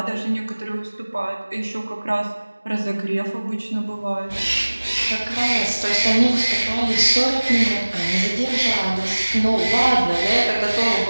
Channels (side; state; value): both; inverted; correlation -1.00